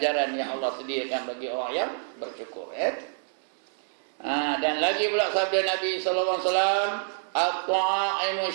yang Allah sediakan bagi orang yang bersyukur. Dan lagi pula sabda Nabi sallallahu alaihi wasallam, at-ta'imu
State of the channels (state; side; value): silent; left; 60 dB below the other